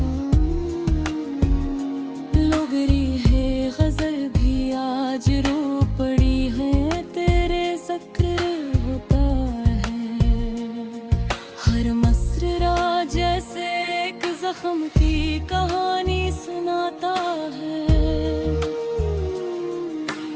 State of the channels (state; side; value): identical; both; correlation 1.00